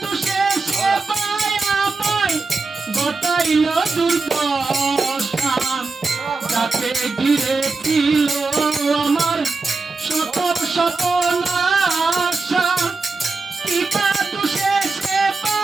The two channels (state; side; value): quieter; left; 3.9 dB